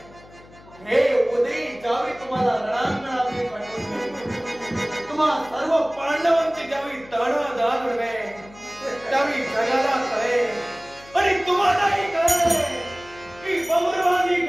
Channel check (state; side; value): noise; left; hum, 23 dB below the sound